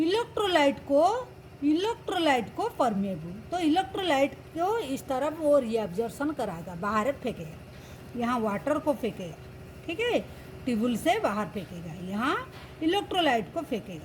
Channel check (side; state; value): both; identical; correlation 1.00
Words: को परमिएबल। तो इलेक्ट्रोलाइट को इस तरफ वो रीअब्जॉर्प्शन कराएगा, बाहर फेंकेगा, यहाँ वाटर को फेंकेगा, ठीक है, ट्यूबुल से बाहर फेंकेगा, यहाँ इलेक्ट्रोलाइट को